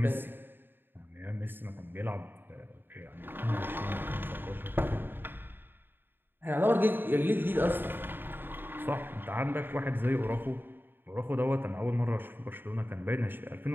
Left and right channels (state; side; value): late; left; 0.096 ms